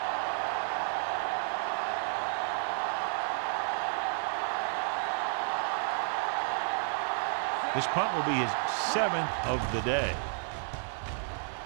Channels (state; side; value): silent; left; 57 dB below the other